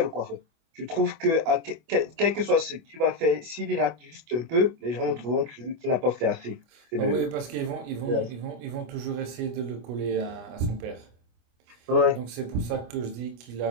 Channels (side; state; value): left; late; 25 ms